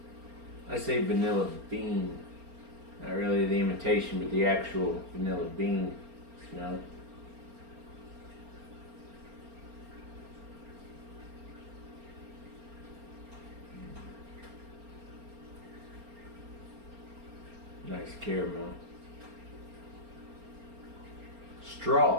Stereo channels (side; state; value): left; late; 4.3 ms